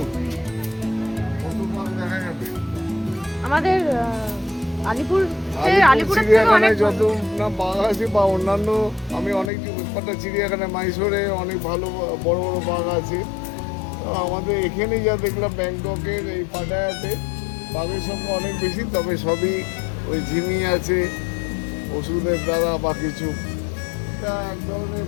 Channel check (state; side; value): drops out; right; at 9.5 s